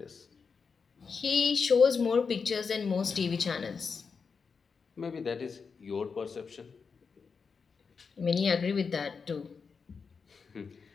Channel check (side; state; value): right; quieter; 5.4 dB